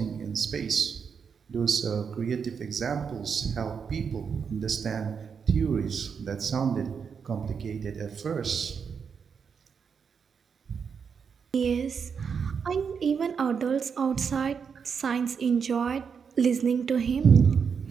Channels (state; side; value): quieter; left; 6.4 dB